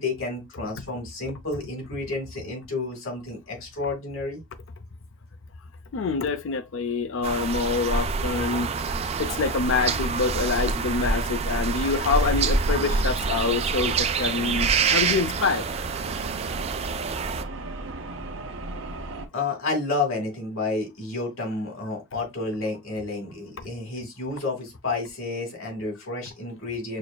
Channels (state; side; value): normal; both; correlation 0.15